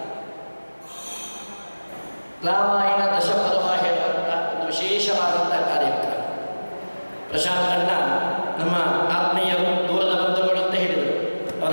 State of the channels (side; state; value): both; inverted; correlation -1.00